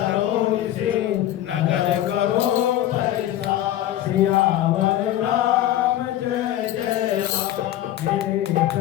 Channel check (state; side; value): quieter; right; 12.9 dB